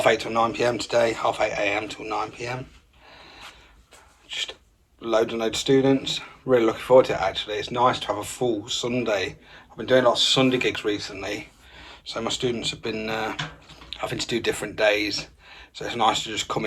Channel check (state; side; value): identical; both; correlation 1.00